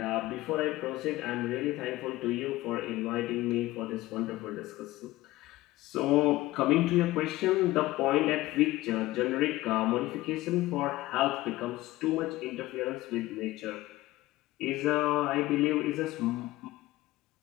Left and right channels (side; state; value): right; quieter; 17.7 dB